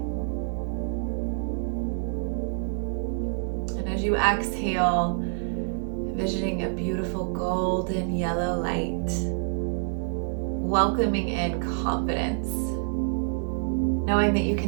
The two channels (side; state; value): left; silent; digital silence